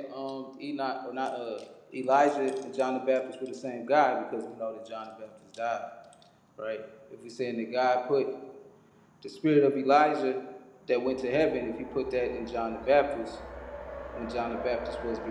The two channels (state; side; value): identical; both; correlation 1.00